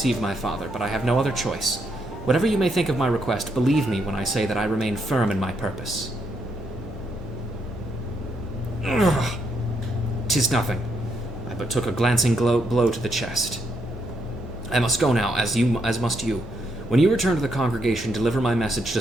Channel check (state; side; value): normal; both; correlation 0.77